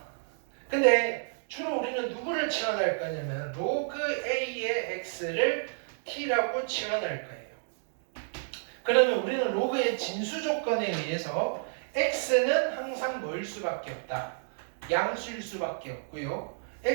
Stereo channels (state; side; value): silent; left; digital silence